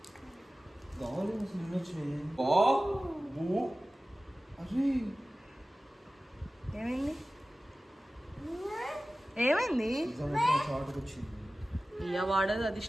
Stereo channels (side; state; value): both; normal; correlation 0.96